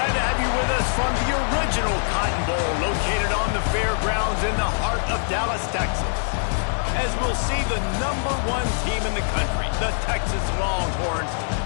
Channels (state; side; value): silent; right; digital silence